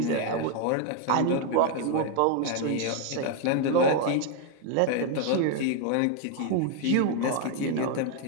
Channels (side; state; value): both; different; correlation 0.01